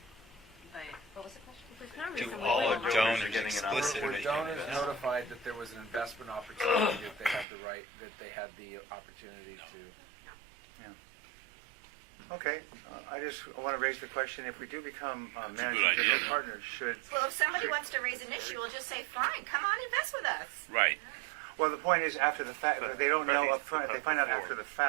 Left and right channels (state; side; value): drops out; left; at 7.5 s